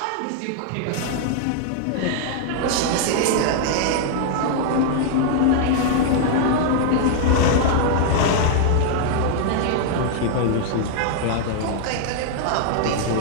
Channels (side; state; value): both; different; correlation -0.01